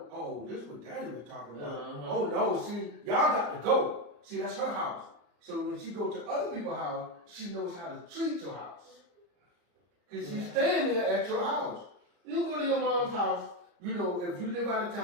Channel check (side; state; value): left; late; 34 ms